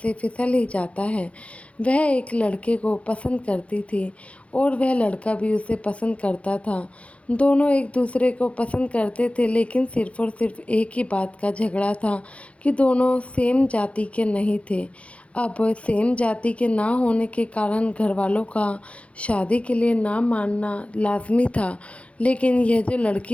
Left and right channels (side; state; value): right; late; 0.063 ms